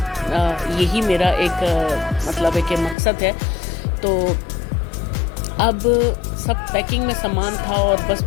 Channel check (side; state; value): right; drops out; at 3.0 s